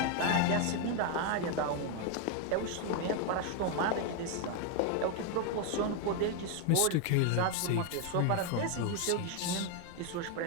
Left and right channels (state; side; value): different; both; correlation 0.01